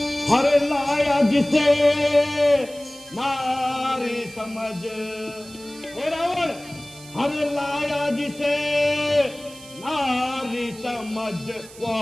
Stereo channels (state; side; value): noise; right; hiss, 19 dB below the sound